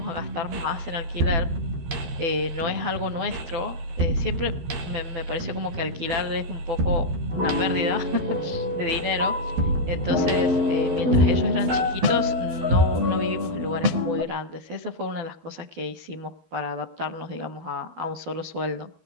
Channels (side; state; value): left; late; 12 ms